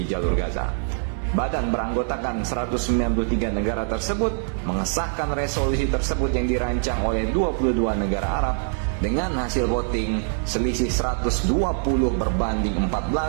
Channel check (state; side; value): silent; left; 63 dB below the other